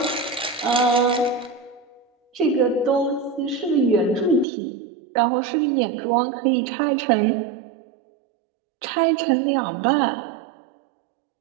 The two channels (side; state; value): left; drops out; at 4.5 s